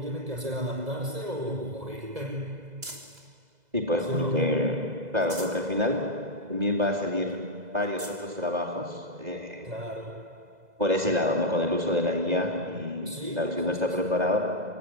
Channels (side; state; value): left; late; 2.0 ms